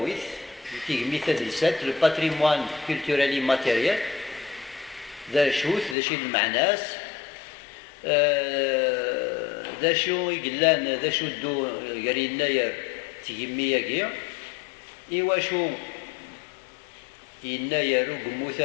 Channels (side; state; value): right; drops out; at 6.0 s